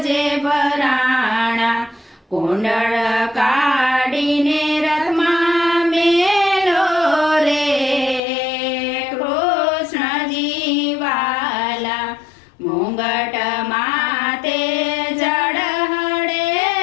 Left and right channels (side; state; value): right; drops out; at 8.2 s